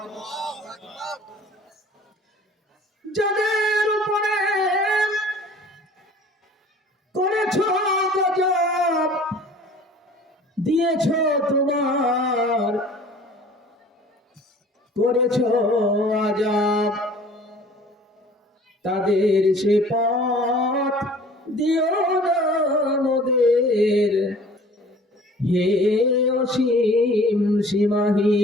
যাদের উপরে করেছো গজব, দিয়েছো তোমার করেছো আযাব, তাদের সে পথ দিও না মোদের, হে অসীম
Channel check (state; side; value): normal; both; correlation 0.49